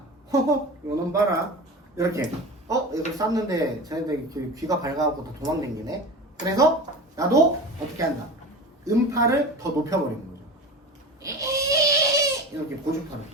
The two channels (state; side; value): normal; both; correlation 0.31